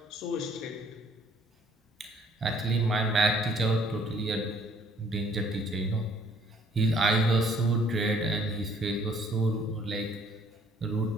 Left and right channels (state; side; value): normal; both; correlation 0.61